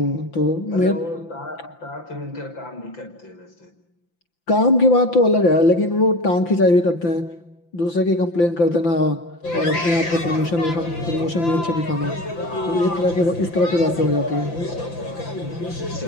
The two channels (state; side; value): late; right; 5.9 ms